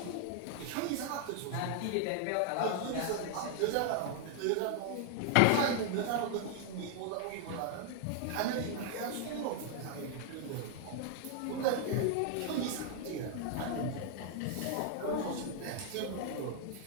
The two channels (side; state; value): both; different; correlation 0.00